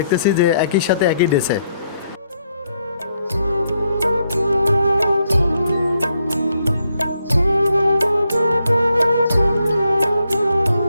যে একই সাথে একই ড্রেসে।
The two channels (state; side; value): inverted; both; correlation -0.77